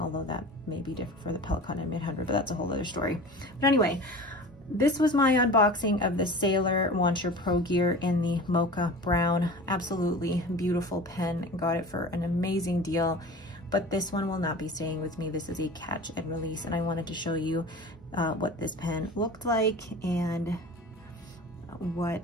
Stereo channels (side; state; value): both; normal; correlation 0.37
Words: although that may be different for the Pellet Cotton M800, but that's a whole other story. But anyway, this was my unboxing of the Sailor Launcher Pro Gear in the Mocha Brown. Absolutely beautiful pen. Got it for an amazing deal, but this one will not be staying with me. This is a catch and release, and I wanted to show you what this pen looked like and